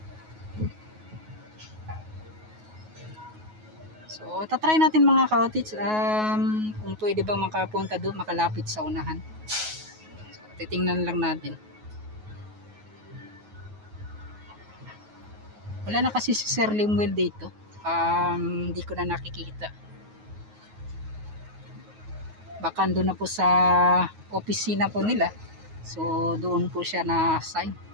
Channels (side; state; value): left; late; 9.4 ms